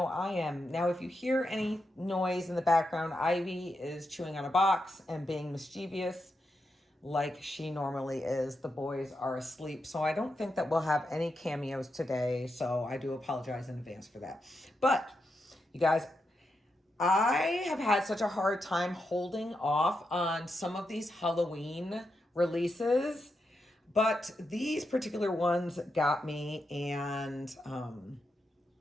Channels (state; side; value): normal; both; correlation 0.85